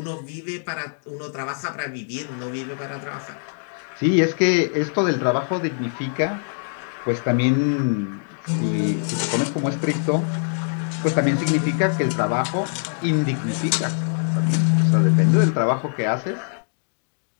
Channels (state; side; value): silent; right; digital silence